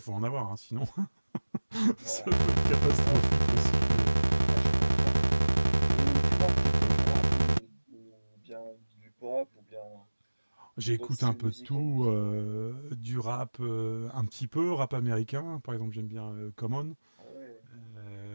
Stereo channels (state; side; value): inverted; both; correlation -1.00